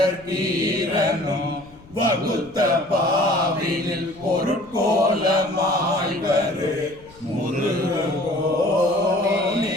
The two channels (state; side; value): noise; left; rumble, 24 dB below the sound